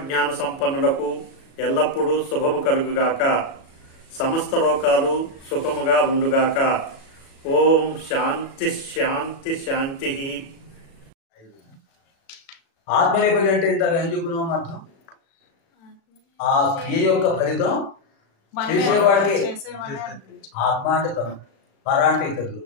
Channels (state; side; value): late; right; 37 ms